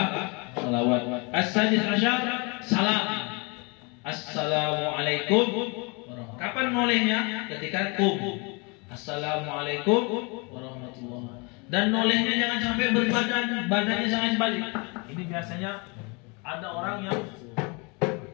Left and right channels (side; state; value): right; quieter; 30.3 dB